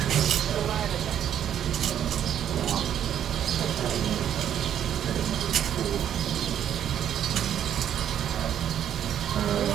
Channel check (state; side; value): quieter; left; 9.9 dB